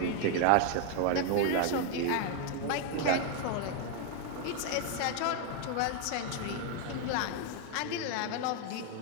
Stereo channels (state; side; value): different; both; correlation 0.00